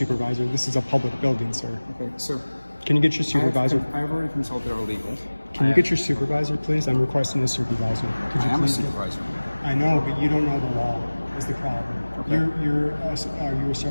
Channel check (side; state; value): both; inverted; correlation -1.00